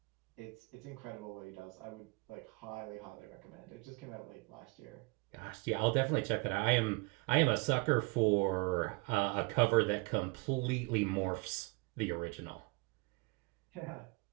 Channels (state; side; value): quieter; left; 28.0 dB